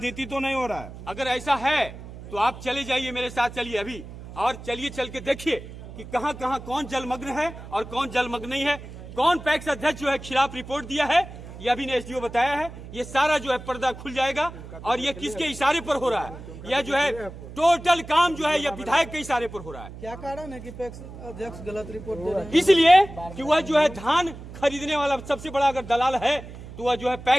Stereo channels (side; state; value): right; noise; hum, 14 dB below the sound